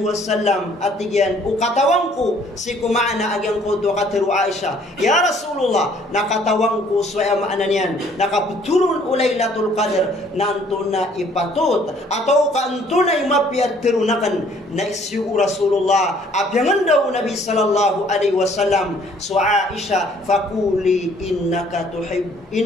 wasallam at tigyan ukatawang ko si kumaana agyang ko do katiru Aisha ya Rasulullah nakatawang ko so ay maana niyan nakaputurun Laylatul Qadr nanto na ipatut atau kanto na imapiat tirunakan na isyu Rasulullah apyangan daw Nabi sallallahu alaihi wasallam so Aisha fakuli innaka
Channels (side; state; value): both; normal; correlation 0.59